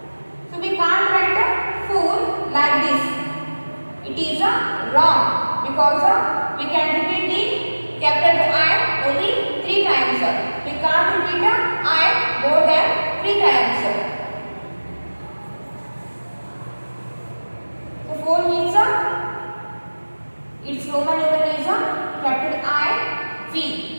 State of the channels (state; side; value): inverted; both; correlation -1.00